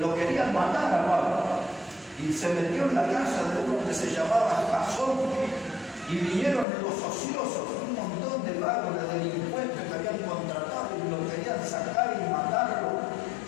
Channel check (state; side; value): drops out; right; at 6.7 s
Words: querían matar a Pablo. Y se metió en la casa de uno que se llamaba Jasón. Y vinieron los ociosos, un montón de vagos, de delincuentes que habían contratado y lo querían sacar y matarlo.